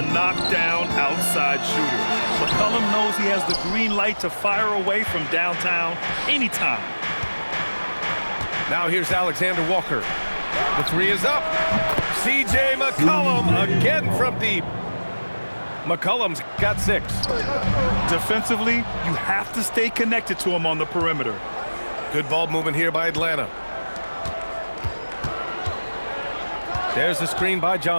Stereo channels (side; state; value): both; inverted; correlation -1.00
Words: knockdown outside shooter. McCollum knows he has the green light to fire away from downtown anytime. Now here's Alexander Walker. The three is up. C.J. McCollum again from deep. McCollum's got 6. Defensively, you have to stay connected to him on the perimeter. Good ball movement here by Atlanta. There's the screen by